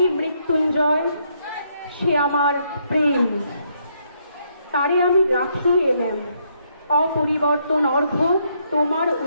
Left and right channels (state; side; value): inverted; both; correlation -0.74